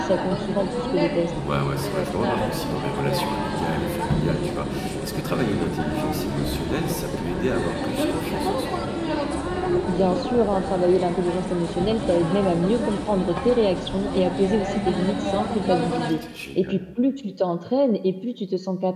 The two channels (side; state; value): both; identical; correlation 1.00